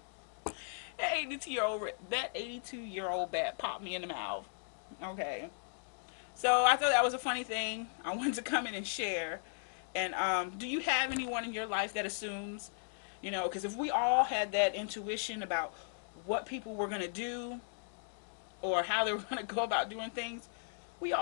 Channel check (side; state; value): right; silent; digital silence